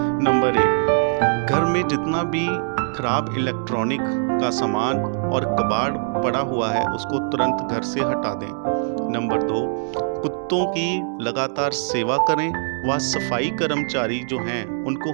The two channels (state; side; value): silent; left; 64 dB below the other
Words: नंबर 1, घर में जितना भी खराब इलेक्ट्रॉनिक का सामान और कबाड़ पड़ा हुआ है उसको तुरंत घर से हटा दें। नंबर 2, कुत्तों की लगातार सेवा करें व सफाई कर्मचारी जो हैं उनको